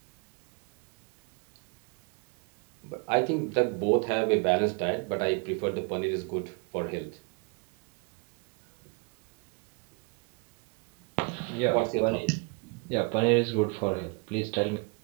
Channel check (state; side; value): quieter; left; 32.5 dB